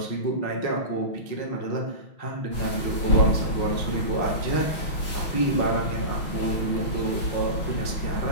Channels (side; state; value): right; late; 6.1 ms